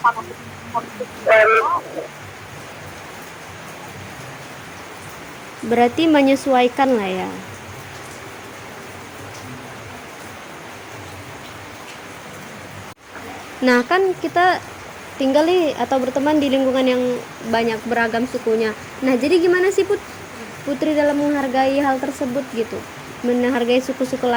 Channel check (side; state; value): both; identical; correlation 1.00